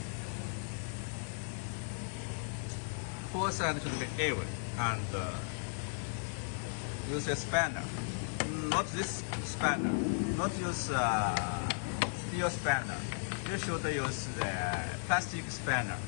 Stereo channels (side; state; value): right; silent; digital silence